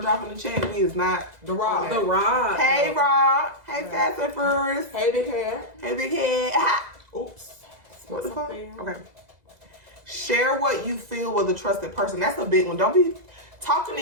dropping the check, me is not The Rock. The Rock. Hey, Rob. Hey, Fast and Furious. Hey, big hair. Hey, big head. Oops. What the fuck? Something. Okay. Share what you feel with a trusted person. That's a big one. Don't be talking to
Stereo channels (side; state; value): left; late; 2.0 ms